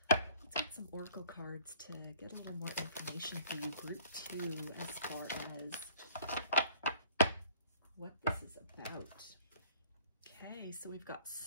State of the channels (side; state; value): both; inverted; correlation -0.55